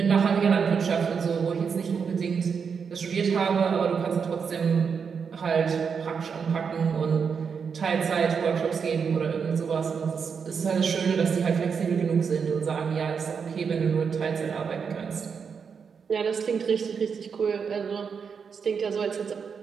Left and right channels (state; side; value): quieter; left; 6.2 dB